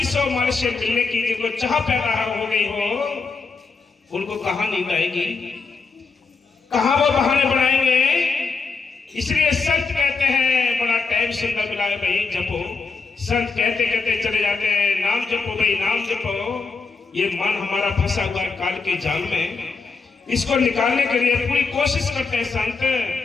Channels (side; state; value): right; quieter; 4.6 dB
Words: मर से मिलने की जिनको चाह पैदा हो गई हो, उनको कहां नींद आएगी, कहां वो बहाने बनाएंगे। इसलिए संत कहते हैं बड़ा टाइम सुंदर मिला है भाई, जपो संत कहते कहते चले जाते हैं, नाम जपो भाई नाम जपो। ये मन हमारा फंसा हुआ है काल के जाल में, इसको निकालने के लिए पूरी कोशिश करते हैं संत,